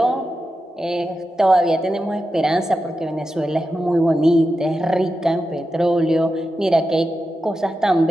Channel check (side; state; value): both; normal; correlation 0.90